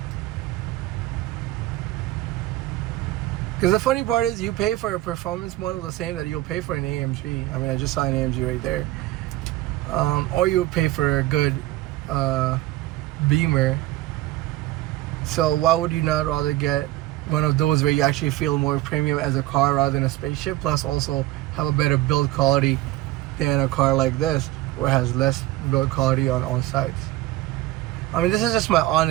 Because the funny part is, you pay for a performance model the same that you'll pay for an AMG. I just saw an AMG right there. Or you would pay for a good Beamer. So why would you not rather get one of those where you actually feel more premium as a car rather than a spaceship, plus also have a better build quality than a car like this, where it has less build quality on all sides? This is just my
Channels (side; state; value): left; quieter; 16.7 dB